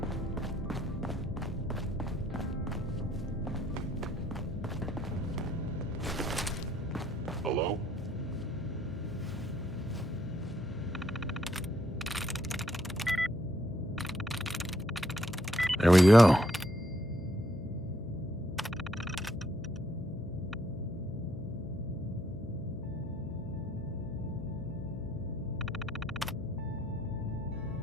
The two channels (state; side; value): noise; left; hum, 13 dB below the sound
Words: Hello? There we go.